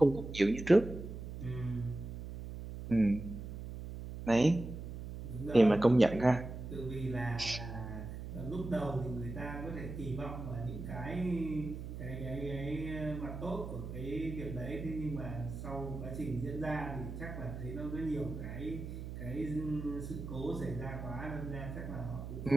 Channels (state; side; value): noise; right; hum, 8 dB below the sound